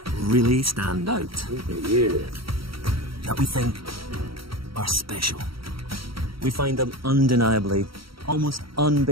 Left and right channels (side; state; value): left; late; 0.75 ms